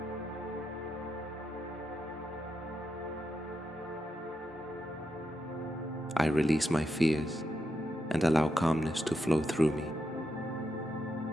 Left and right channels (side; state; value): both; normal; correlation 0.84